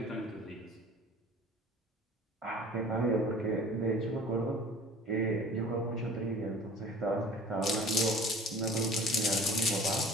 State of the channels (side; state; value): both; normal; correlation 0.45